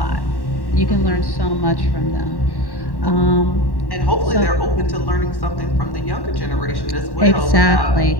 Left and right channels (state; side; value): late; right; 1.1 ms